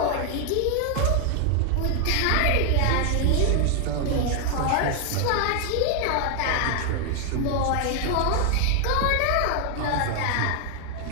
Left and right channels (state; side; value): different; both; correlation 0.00